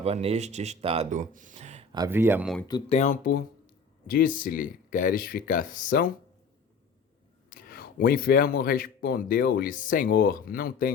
neste estado havia muito tempo, disse-lhe: Queres ficar são? O enfermo respondeu-lhe: Senhor, não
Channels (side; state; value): right; quieter; 4.7 dB